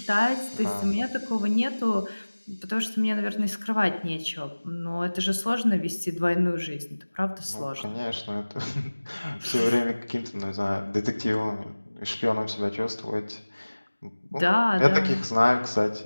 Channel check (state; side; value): inverted; both; correlation -1.00